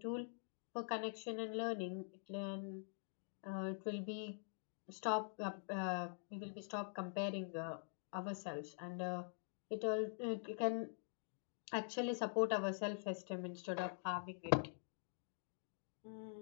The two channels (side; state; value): right; silent; digital silence